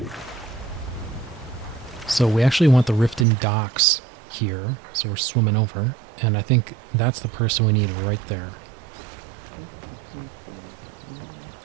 So we actually want the Riften docks here, so we're swimming over, and I think that's the person we need right there.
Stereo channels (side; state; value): left; drops out; at 3.2 s